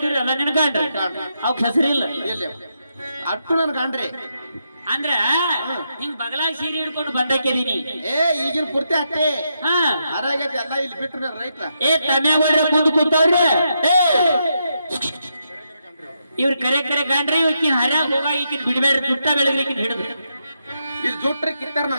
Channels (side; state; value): both; inverted; correlation -0.82